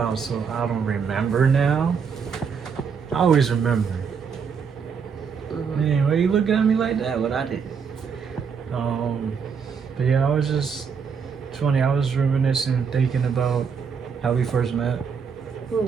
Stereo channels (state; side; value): quieter; left; 6.3 dB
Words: So I don't remember now. I always remember. Man, why you looking at me like that? What I did? But yeah, I was just. It's funny. I was reminiscing, thinking about how we first met.